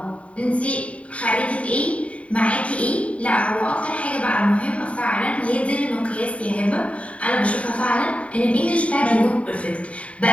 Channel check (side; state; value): right; late; 0.065 ms